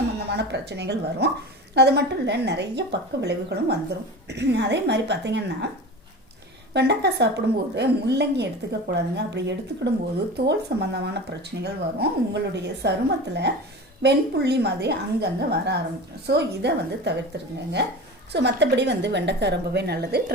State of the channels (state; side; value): normal; both; correlation 0.32